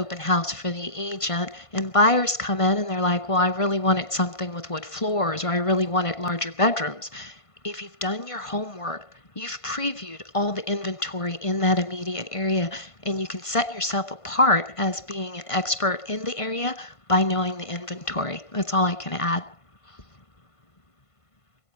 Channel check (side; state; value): right; late; 1.5 ms